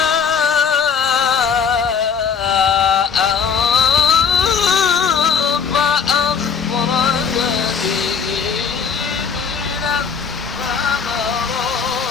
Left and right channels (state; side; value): quieter; right; 6.4 dB